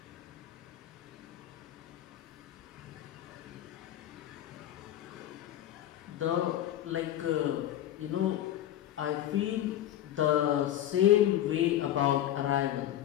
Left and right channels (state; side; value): quieter; right; 12.3 dB